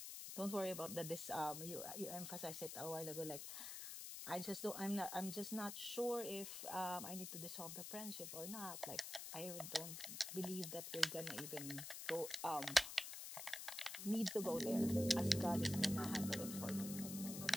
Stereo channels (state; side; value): noise; left; hiss, 7 dB below the sound